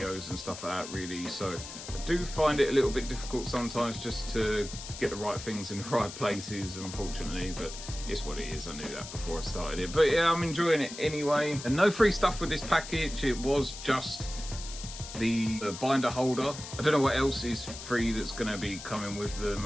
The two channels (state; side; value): noise; left; hiss, 11 dB below the sound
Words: and stuff like that really, so I do find it a little bit difficult sometimes just to get the right things in the right places, unfortunately, but it's what it is. I knew that before I started it, but yeah, I'm enjoying it anyway. And no free stuff with this package, it was just the binder holder. I don't know what else is free that's going to be coming with them.